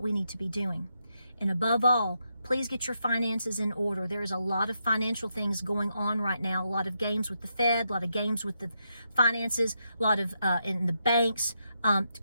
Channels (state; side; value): inverted; both; correlation -0.82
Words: we need to be doing. And above all, please get your finances in order. There is a lot of financial things going on right now, a lot of games with the Fed, a lot of games with the finances, a lot of in the banks.